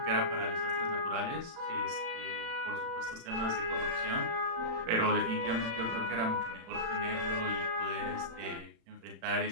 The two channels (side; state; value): left; late; 35 ms